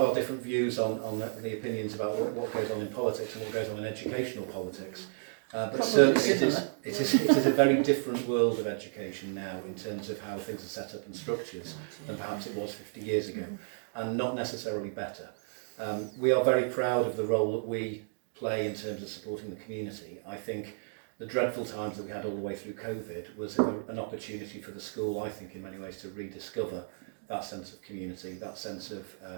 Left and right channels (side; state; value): left; silent; digital silence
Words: different views on the opinions about what goes on in politics and what goes on in educational politics. But certainly it is a very different world of education now in terms of how things are set up and structured than perhaps it was 50 years ago, and not necessarily better. We are very proud of the role that we play in terms of supporting the community. I think the dreadful times that we had all the way through COVID was an opportunity for the school, I think, in many ways to rediscover that sense of community, that sense of